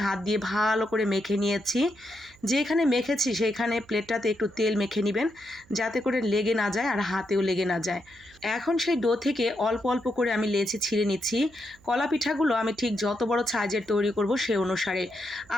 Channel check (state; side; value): noise; right; hum, 28 dB below the sound